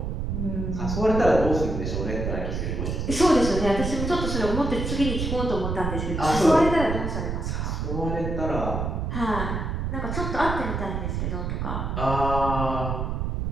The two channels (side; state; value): right; noise; rumble, 2 dB below the sound